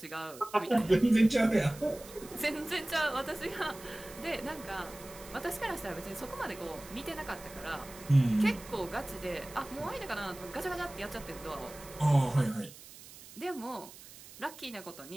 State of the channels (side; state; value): right; noise; hiss, 17 dB below the sound